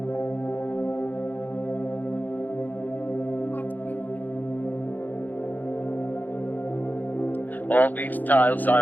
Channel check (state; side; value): late; right; 0.084 ms